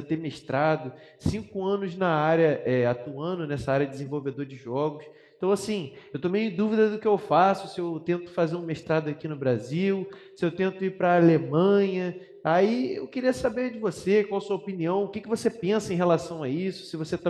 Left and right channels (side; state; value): both; identical; correlation 1.00